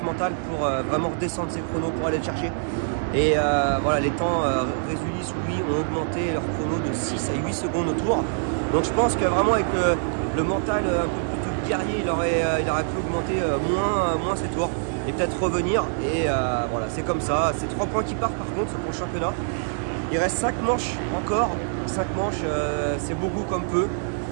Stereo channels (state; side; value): silent; left; 62 dB below the other